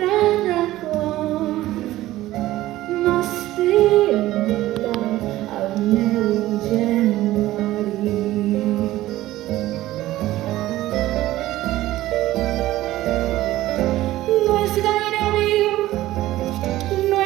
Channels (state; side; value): quieter; left; 15.8 dB